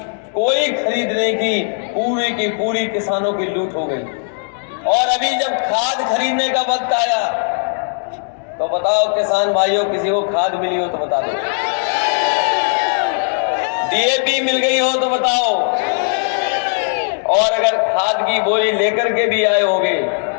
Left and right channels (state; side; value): silent; right; 68 dB below the other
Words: कोई खरीद नहीं की, पूरी की पूरी किसानों की लूट हो गई। और अभी जब खाद खरीदने का वक्त आया तो बताओ किसान भाइयों, किसी को खाद मिली हो तो बता दो, डीएपी मिल गई हो तो बताओ। और अगर खाद की बोरी लेकर के भी आए होंगे